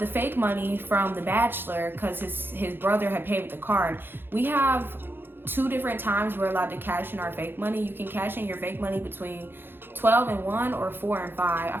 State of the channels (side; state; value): left; late; 0.10 ms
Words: fake money from The Bachelor because his brother had paid with the card. We have 2 different times we're allowed to cash in our fake money. You can cash in your fake money between 12 and 1 or 4 and 5. I